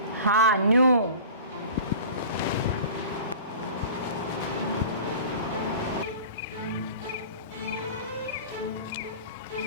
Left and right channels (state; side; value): inverted; both; correlation -0.40